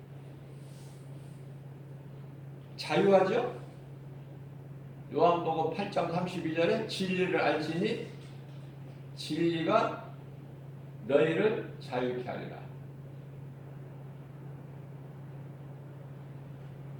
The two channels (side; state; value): both; identical; correlation 1.00